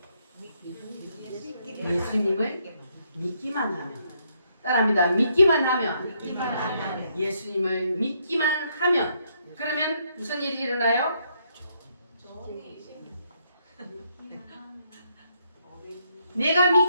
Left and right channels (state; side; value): inverted; both; correlation -0.74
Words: 예수님을 믿기만 하면. 따라합니다. 믿기만 하면. 예수님을 믿기만 하면. 그러면 무슨 일이 일어나요? 내가